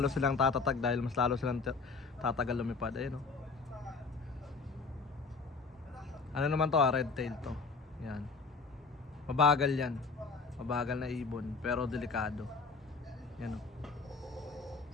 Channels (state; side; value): quieter; right; 4.4 dB